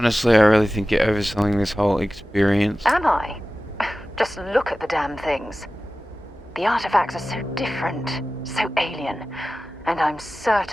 I really think you're overselling this whole experience. Am I? Just look at the damn things. The artifacts are so different, so alien, and I'm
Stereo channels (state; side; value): normal; both; correlation 0.96